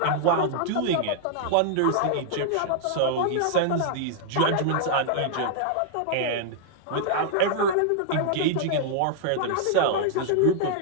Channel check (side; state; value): both; different; correlation -0.01